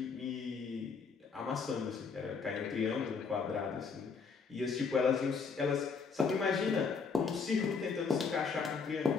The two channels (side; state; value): right; quieter; 5.3 dB